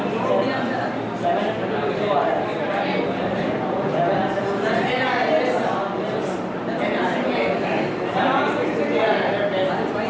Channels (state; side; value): identical; both; correlation 1.00